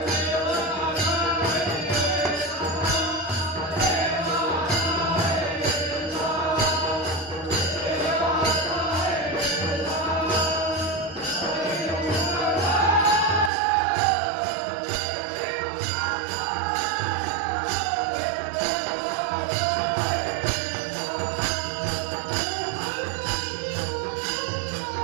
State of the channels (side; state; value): left; drops out; at 13.5 s